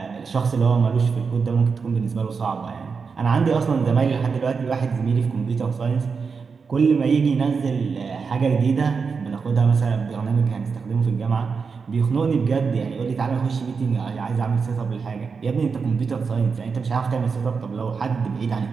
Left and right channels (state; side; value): quieter; left; 5.3 dB